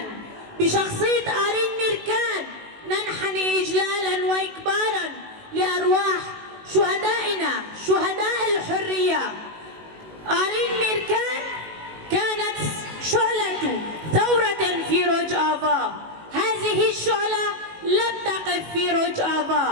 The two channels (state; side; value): late; left; 19 ms